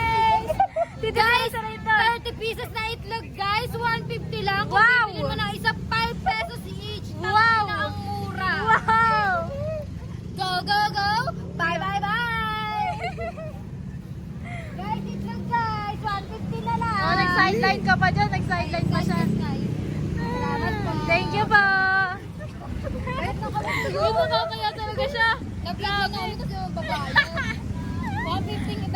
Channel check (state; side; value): identical; both; correlation 1.00